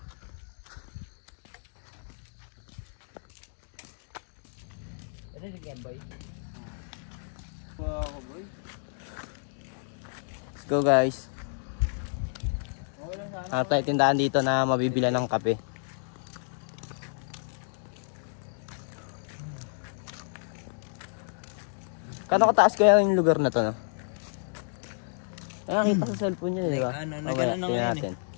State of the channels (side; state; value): right; silent; digital silence